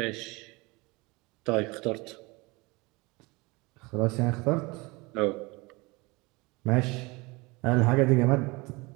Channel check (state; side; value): quieter; left; 24.8 dB